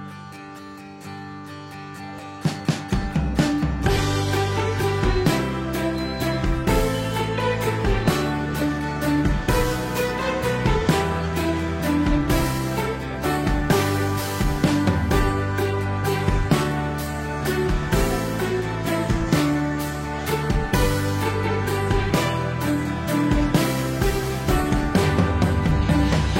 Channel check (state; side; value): identical; both; correlation 1.00